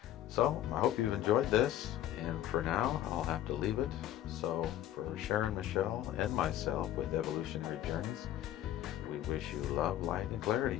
So I hope you've enjoyed this, and for now I'll have to leave it. So for Sharon, Michelle, and myself with Evolutionary Journeys, we wish you love, light, and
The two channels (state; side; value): quieter; right; 12.6 dB